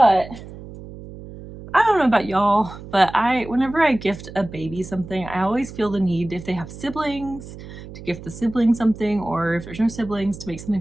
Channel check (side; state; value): right; noise; hum, 14 dB below the sound